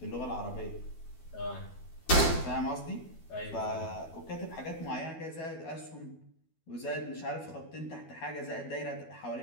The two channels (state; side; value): late; right; 12 ms